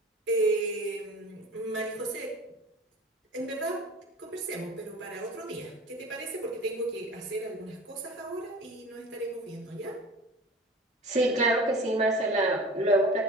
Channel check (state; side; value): normal; both; correlation 0.39